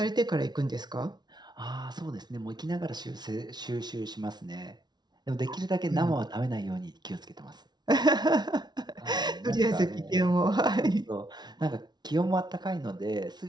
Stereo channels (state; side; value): late; left; 0.20 ms